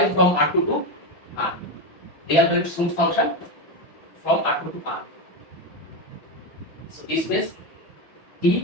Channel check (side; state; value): right; late; 6.2 ms